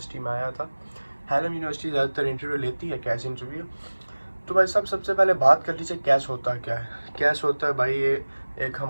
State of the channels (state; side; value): inverted; both; correlation -1.00